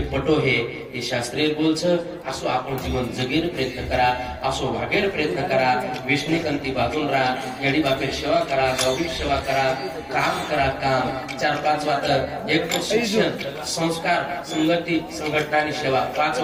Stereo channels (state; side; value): identical; both; correlation 1.00